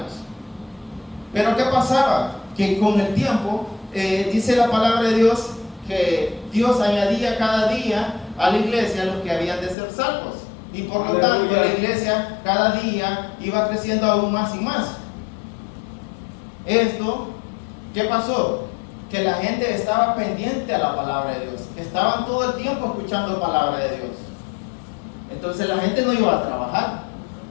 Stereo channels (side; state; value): right; drops out; at 9.8 s